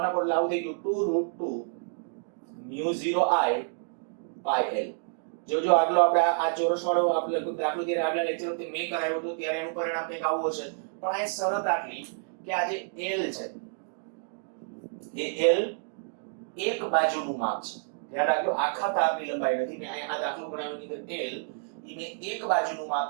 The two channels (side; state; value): left; silent; digital silence